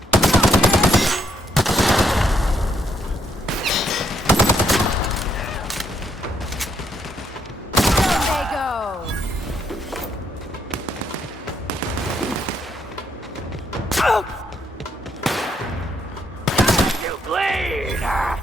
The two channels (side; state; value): both; normal; correlation 0.73